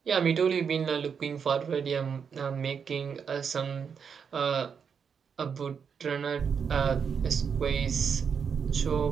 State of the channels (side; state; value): left; quieter; 6.6 dB